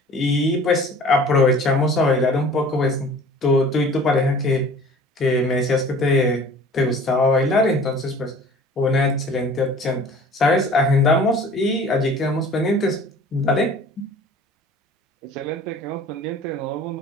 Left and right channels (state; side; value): normal; both; correlation 0.47